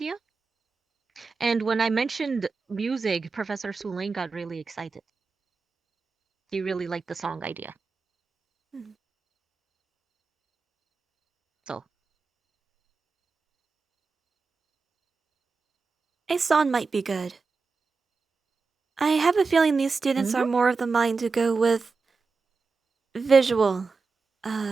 And when I mentioned music, Professor Sulain got really excited. He really liked the song idea. So, A song might be good. I have a feeling these students are more of the mind to go with visual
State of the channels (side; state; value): left; quieter; 4.5 dB